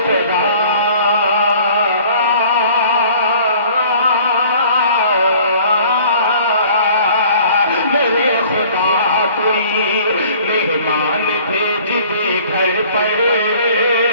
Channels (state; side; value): inverted; both; correlation -0.52